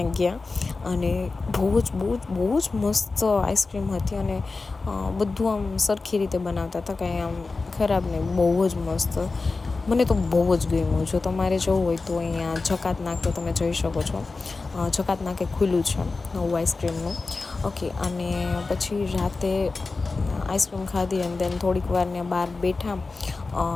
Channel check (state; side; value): quieter; right; 3.9 dB